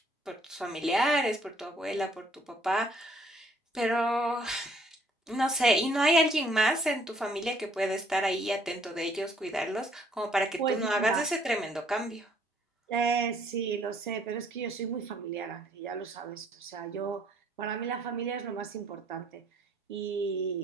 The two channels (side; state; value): both; normal; correlation 0.64